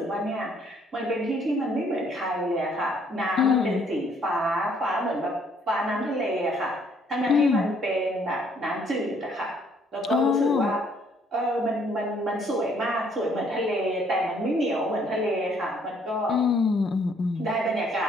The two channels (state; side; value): normal; both; correlation 0.65